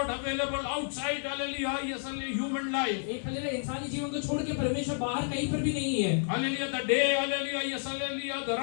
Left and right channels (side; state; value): right; silent; digital silence